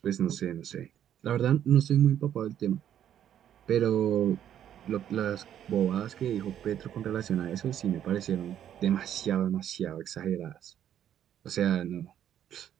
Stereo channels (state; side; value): quieter; left; 10.3 dB